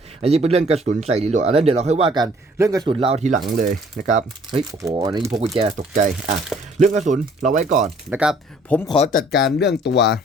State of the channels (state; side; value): normal; both; correlation 0.58